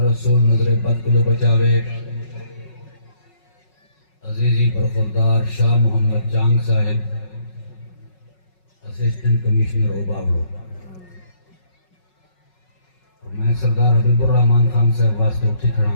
رسول نظر بد کو بچاوے عزیزی برخوردار شاہ محمد چانگ صاحب اسسٹنٹ کمشنر اوباوڑو اور میں سردار حبیب الرحمان خان صاحب واسطے اٹھی کھڑا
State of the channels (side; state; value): right; late; 5.4 ms